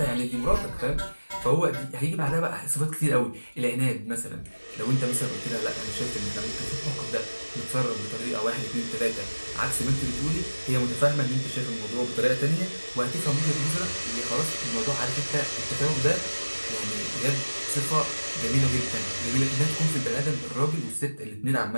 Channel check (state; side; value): inverted; both; correlation -1.00